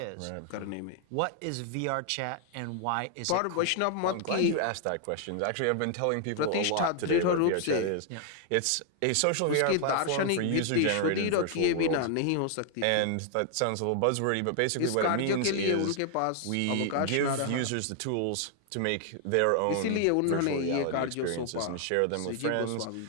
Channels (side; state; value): both; different; correlation 0.00